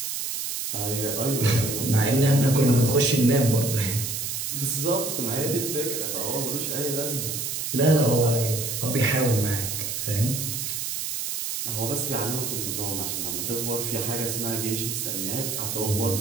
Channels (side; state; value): right; noise; hiss, 3 dB below the sound